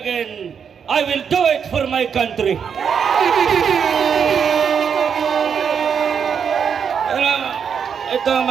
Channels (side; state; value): left; quieter; 7.1 dB